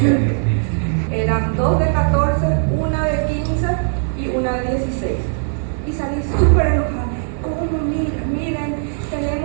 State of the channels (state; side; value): silent; left; digital silence